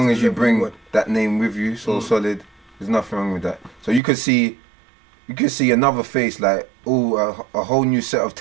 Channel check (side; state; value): left; drops out; at 4.0 s